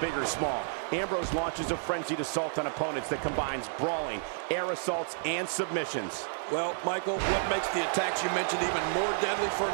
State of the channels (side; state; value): left; silent; digital silence